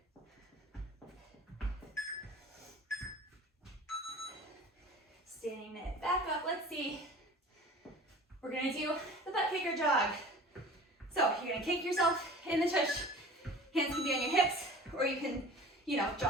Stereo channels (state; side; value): normal; both; correlation 0.41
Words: Standing it back up, let's see. We're gonna do the butt kicker jog. So you're gonna kick yourself in the tush. Hands can be on your hips, or you can,